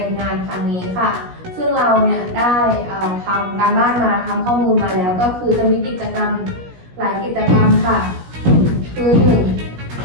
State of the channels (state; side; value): late; left; 17 ms